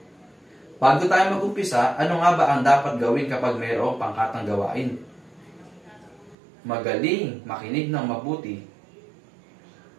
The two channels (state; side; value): drops out; left; at 6.4 s